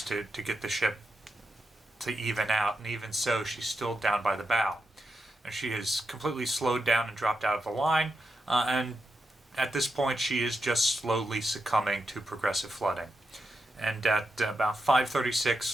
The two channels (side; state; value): both; normal; correlation 0.87